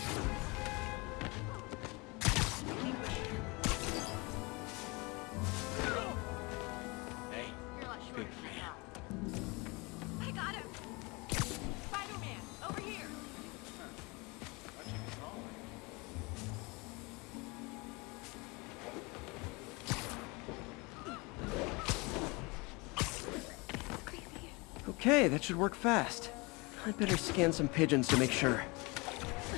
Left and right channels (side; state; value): right; quieter; 26.7 dB